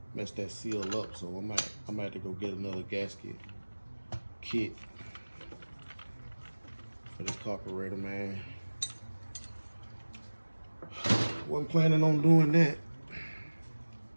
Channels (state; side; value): inverted; both; correlation -1.00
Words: messed that seal up. So I might have to go get another gasket kit for this carburetor, man. Wasn't planning on doing that.